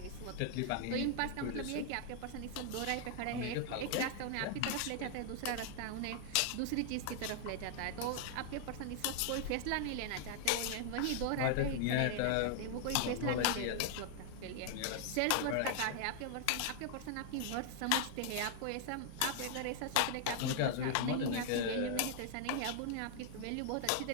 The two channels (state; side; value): different; both; correlation 0.00